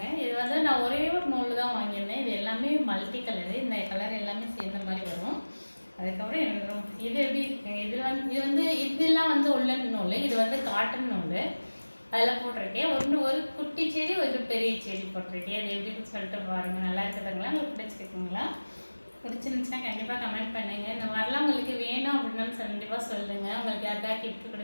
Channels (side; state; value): both; inverted; correlation -1.00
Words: இது வந்து நான் ஒரே ஒரு நூல் தான் வாங்கியிருந்தேன். இது எல்லாமே மல்டி கலரு. இந்த கலர் எல்லாமே சேர்ந்த மாதிரி வரும். அதுக்கப்புறம் எனக்கு இது எப்படி இருக்குங்க, இதெல்லாம் வந்து உள்ளன் நூல், இது வந்து காட்டன் நூல். அதில் போட்டிருக்கேன். ஒரு குட்டி செடி, ஒரு பெரிய செடி போட்டிருக்கேன். அது எப்படின்னு சொல்லிட்டு பாருங்கள். நல்லா இருக்குதுங்களா? உங்களுக்கு பிடிச்சிருக்குங்களா? பிடிச்சிருந்துச்சுன்னா கண்டிப்பாக கமெண்ட் பண்ணுங்கள். இந்த மாதிரிலாம் உங்களுக்கு வேணும் அப்படின்னாலும் கண்டிப்பாக சொல்லுங்கள். உங்களுக்கு யாருக்காக கிஃப்ட்